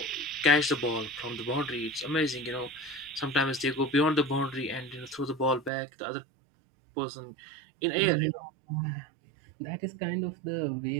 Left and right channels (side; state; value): left; drops out; at 5.7 s